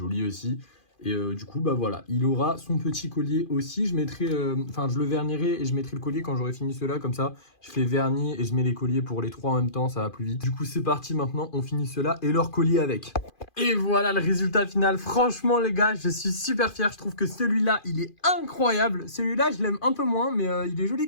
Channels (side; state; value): right; late; 2.4 ms